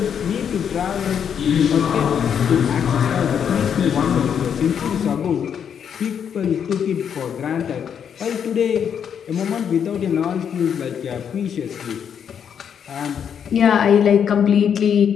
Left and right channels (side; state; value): right; quieter; 8.0 dB